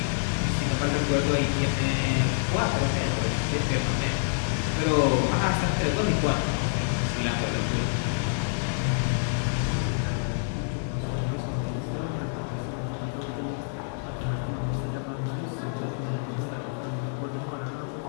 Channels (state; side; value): silent; right; 60 dB below the other